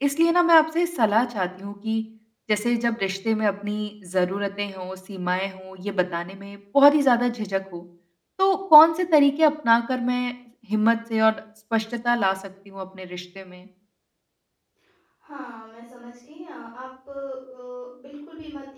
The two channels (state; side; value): identical; both; correlation 1.00